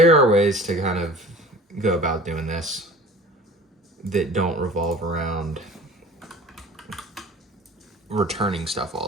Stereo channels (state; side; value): normal; both; correlation 0.43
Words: are ways to kind of go about doing this that don't revolve around returning stuff all